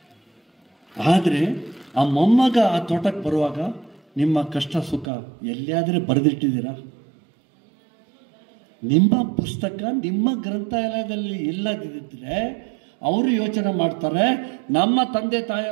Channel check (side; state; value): left; drops out; at 5.1 s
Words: ಆದರೆ ಆ ಮೊಮ್ಮಗ ಆ ತೋಟಕ್ಕೆ ಬರುವಾಗ ನಿಮ್ಮ ಕಷ್ಟ ಸುಖ ಎಲ್ಲಿಯಾದರೆ ಬರೆದಿಟ್ಟಿದ್ದೀರಾ? ನಿಮ್ಮ ಪುಸ್ತಕ ನಿಮ್ಮ ಗ್ರಂಥಾಲಯದಲ್ಲಿ ಇಲ್ಲದಿದ್ದರೆ ಅವರು ಯೋಚನೆ ಮಾಡ್ತಾರೆ, ನಮ್ಮ ತಂದೆ